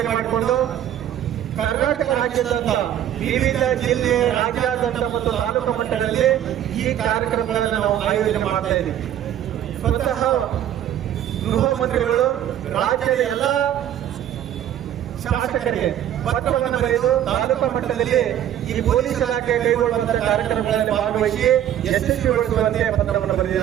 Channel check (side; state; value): left; quieter; 11.0 dB